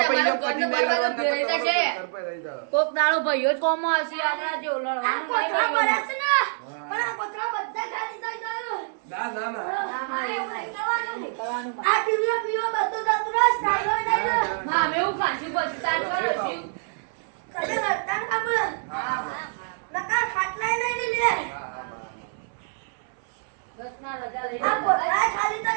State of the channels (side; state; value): left; silent; 61 dB below the other